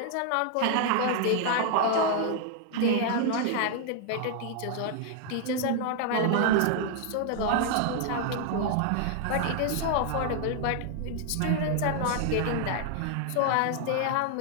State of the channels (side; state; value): both; different; correlation 0.00